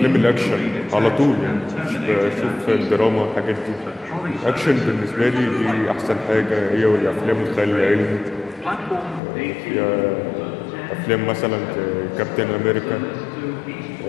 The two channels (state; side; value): drops out; right; at 9.2 s